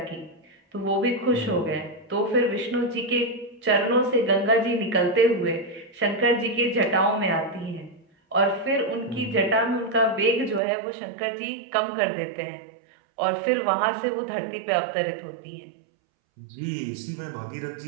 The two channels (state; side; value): drops out; left; at 10.6 s